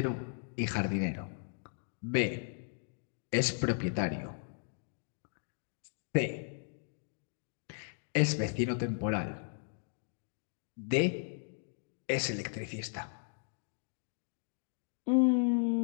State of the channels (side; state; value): right; silent; 54 dB below the other